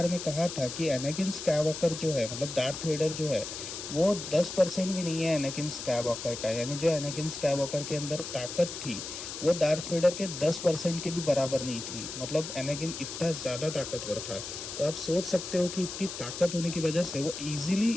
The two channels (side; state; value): left; noise; hiss, 8 dB below the sound